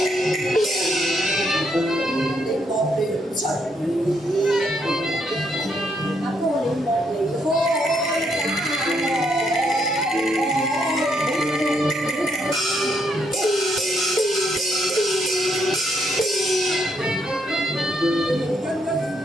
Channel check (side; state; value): both; normal; correlation 0.74